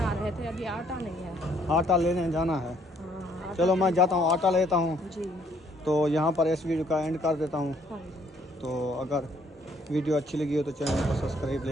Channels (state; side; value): normal; both; correlation 0.65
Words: रहे थे, अभी आटा नहीं है। आटा लेने जाना है। हाँ, चलो मैं जाता हूँ, आटा लेता हूँ। जी। तो यहाँ पर इस वीडियो का एंड कर देता हूँ। हाँ, तो अगर वीडियो अच्छी लगी हो तो चैनल को सब्सक्राइब